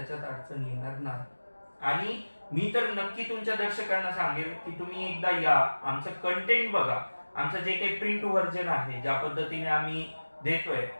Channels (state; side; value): inverted; both; correlation -1.00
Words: अडचण येणार नाही. आणि मी तर नक्की तुमच्या दर्शकांना सांगेल की तुम्ही एकदा या, आमचं कंटेंट बघा, आमचं जे काही प्रिंट व्हर्जन आहे ज्या पद्धतीने आम्ही देतोय